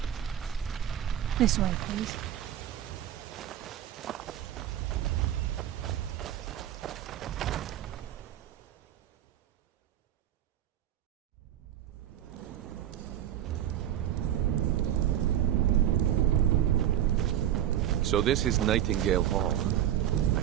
This way, please. So this is Nightingale Hall. I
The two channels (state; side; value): quieter; left; 11.3 dB